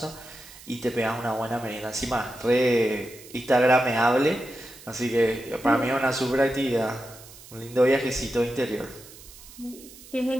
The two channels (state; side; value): noise; right; hiss, 19 dB below the sound